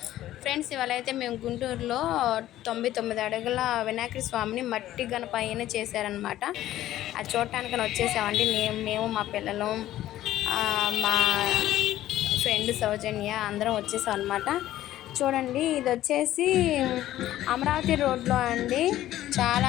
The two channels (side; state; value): right; quieter; 13.8 dB